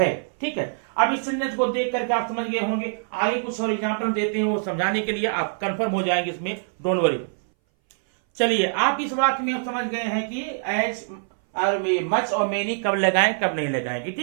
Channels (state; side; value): silent; left; 60 dB below the other